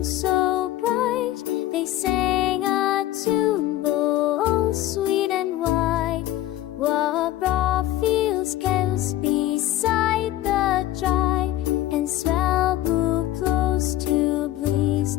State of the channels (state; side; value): quieter; right; 14.3 dB